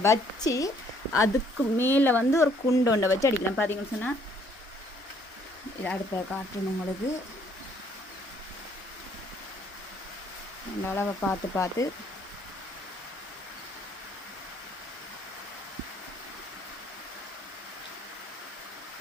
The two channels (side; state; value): both; normal; correlation 0.63